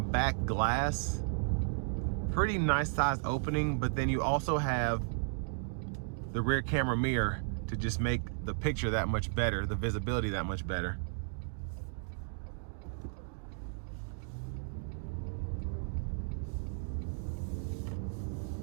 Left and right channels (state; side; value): silent; left; digital silence